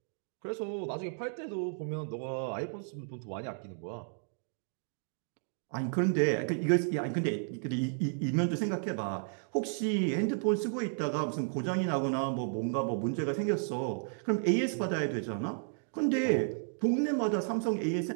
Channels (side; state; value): left; silent; digital silence